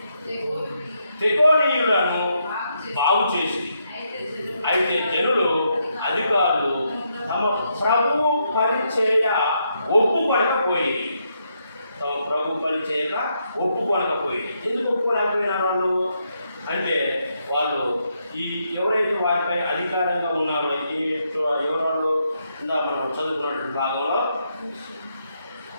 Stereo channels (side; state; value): both; inverted; correlation -0.79